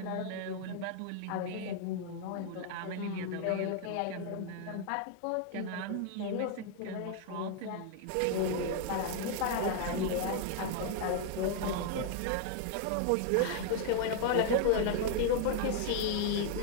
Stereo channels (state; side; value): different; both; correlation 0.00